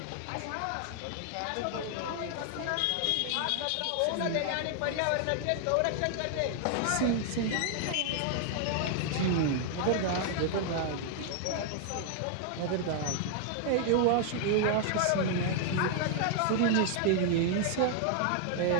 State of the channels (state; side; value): different; both; correlation 0.00